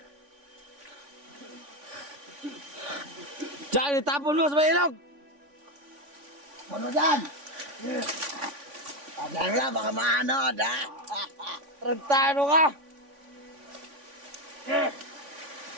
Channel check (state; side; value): late; left; 3.5 ms